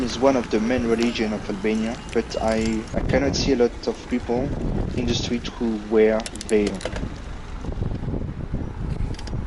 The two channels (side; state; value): both; identical; correlation 1.00